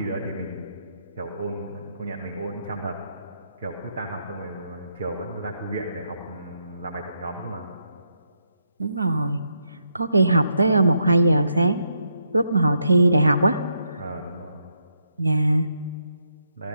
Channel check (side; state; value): both; inverted; correlation -0.79